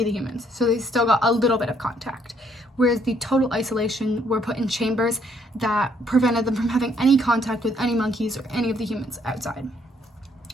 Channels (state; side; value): normal; both; correlation 0.68